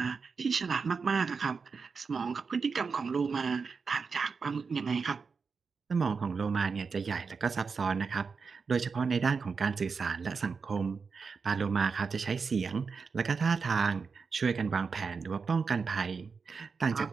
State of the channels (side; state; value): left; quieter; 5.1 dB